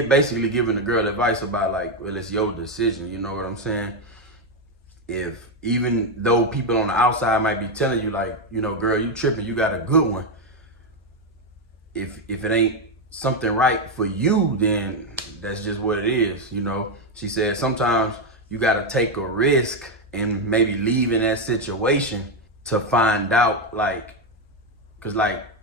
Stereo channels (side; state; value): both; normal; correlation 0.06